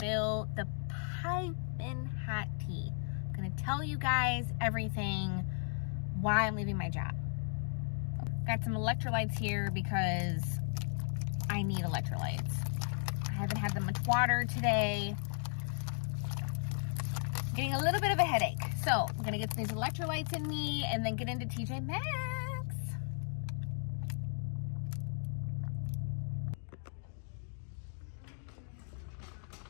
the piping hot tea. I'm going to tell you guys everything, why I'm leaving my job. Got some electrolytes here because I need electrolytes. I haven't had that much water today. getting a little bit of a headache. So I'm gonna get these electrolytes in me and then get into TJ Maxx.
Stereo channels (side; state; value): right; silent; 54 dB below the other